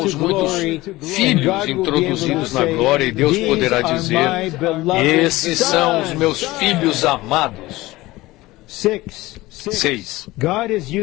os muitos filhos introduzidos na glória, e Deus poderá dizer, esses são os meus filhos amados. 6.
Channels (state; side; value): quieter; right; 19.0 dB